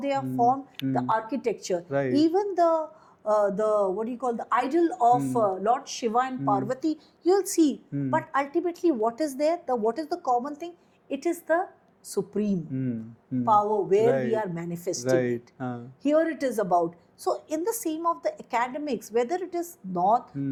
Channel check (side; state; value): both; identical; correlation 1.00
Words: are formed, the architecture, even the what do you call, the idol of Lord Shiva and Parvati, you'll see. But ultimately, what is there? What is the common thing? It is the supreme power where we are manifesting it. Here it is about. So in the same of the academics, whether it is North,